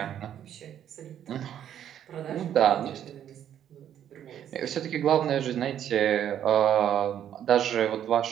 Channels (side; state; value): left; quieter; 10.1 dB